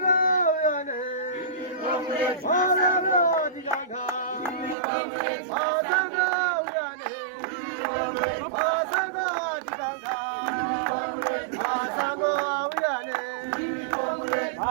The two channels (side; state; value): left; drops out; at 4.8 s